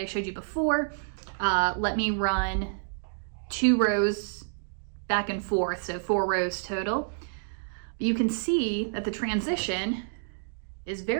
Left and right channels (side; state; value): left; silent; digital silence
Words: showed you before, let me run 2 rows back and forth, so 4 rows total. But you can see that the transition is